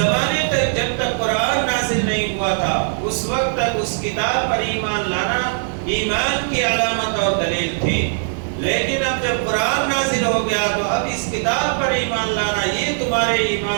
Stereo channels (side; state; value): left; silent; 61 dB below the other